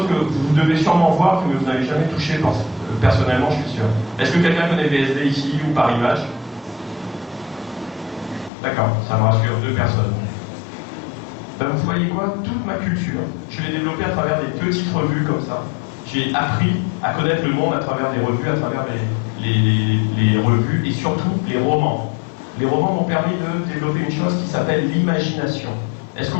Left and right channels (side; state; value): right; drops out; at 8.5 s